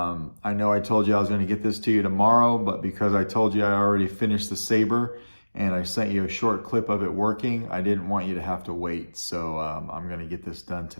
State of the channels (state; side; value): inverted; both; correlation -1.00